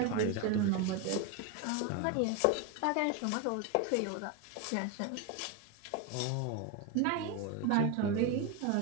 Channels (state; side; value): different; both; correlation 0.02